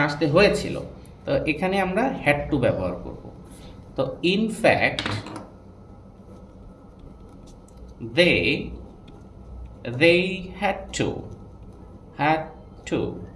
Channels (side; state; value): both; identical; correlation 1.00